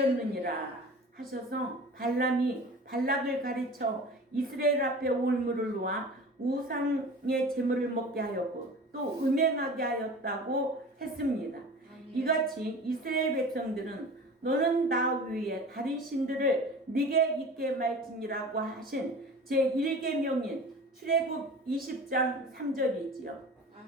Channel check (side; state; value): both; normal; correlation 0.38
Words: 하셔서 발람이 발락을 가르쳐 이스라엘 앞에 올무를 놓아 우상의 재물을 먹게 하였고 또 음행하게 하였다고 했습니다. 이같이 이스라엘 백성들은 너는 나 위에 다른 신들을 네게 있게 말지니라고 하신 제1계명인 출애굽 20장 3절이지요.